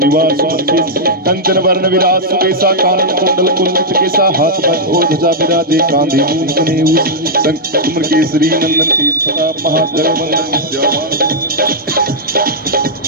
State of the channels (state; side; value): normal; both; correlation -0.07